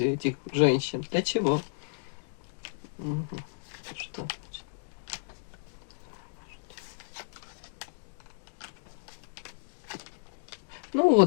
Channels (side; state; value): right; silent; digital silence